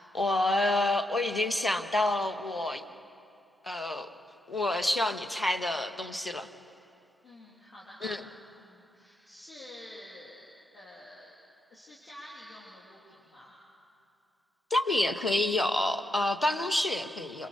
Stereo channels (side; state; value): both; normal; correlation 0.82